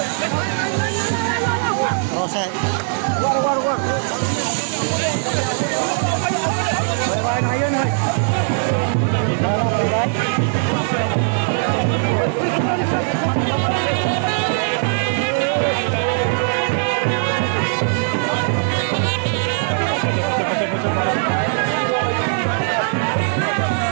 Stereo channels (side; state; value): left; silent; digital silence